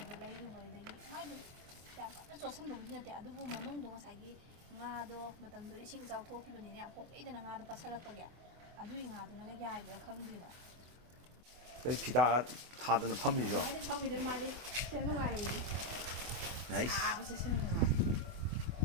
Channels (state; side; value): late; left; 24 ms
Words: ꯂꯩꯔꯨꯕꯗꯒꯤ ꯃꯥꯏꯗꯨ ꯌꯥꯝ ꯀꯟꯅ ꯆꯣꯠꯁꯟꯕꯕꯨꯗꯤ ꯅꯠꯇꯦ ꯑꯗꯨꯕꯨ ꯃꯅꯨꯡꯗꯣ ꯉꯁꯥꯏꯒꯤ ꯉꯥꯗꯣ ꯃꯇꯝꯗꯨꯗ ꯏꯁꯤꯡ ꯏꯆꯥꯎ ꯊꯣꯛꯈꯤꯕꯅꯤꯅ ꯌꯥꯝ ꯄꯣꯛꯂꯛꯏꯗꯅ ꯉꯥꯗꯣ ꯄꯠꯁꯜꯂꯛꯄꯒꯤ ꯑꯗꯨꯒꯤ ꯉꯥꯗꯨꯅꯒ ꯌꯥꯏꯕ꯭ꯔꯥ ꯈꯪꯗꯦꯕ ꯀꯩ ꯐꯤꯗꯥ ꯊꯥꯗꯅ ꯐꯝꯃꯤꯕꯣ ꯐꯝꯃꯤꯗꯣ ꯃꯥꯗꯤ ꯁꯤ ꯅꯨꯡꯉꯥꯏꯔꯤꯅꯤ ꯁꯥꯕꯁꯦ ꯁꯤ ꯅꯨꯡꯉꯥꯏ